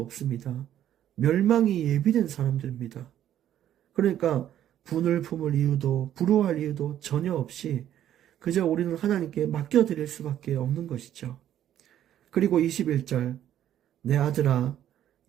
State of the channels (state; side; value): quieter; left; 11.2 dB